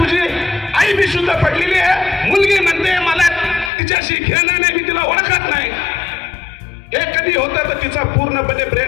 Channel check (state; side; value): drops out; right; at 3.7 s